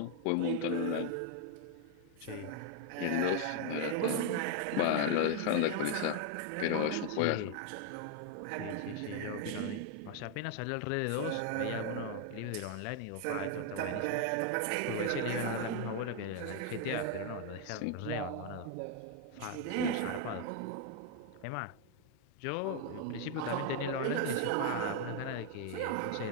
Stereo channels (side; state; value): both; different; correlation 0.00